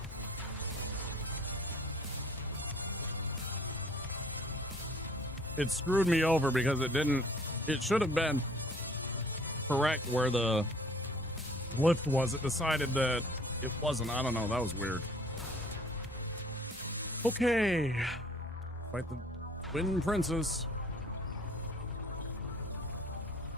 It screwed me over because it should have been correct where the lift was. It decided that it wasn't. I don't know. That was weird. Okay. Fight the Twin Princess.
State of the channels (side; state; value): both; normal; correlation 0.55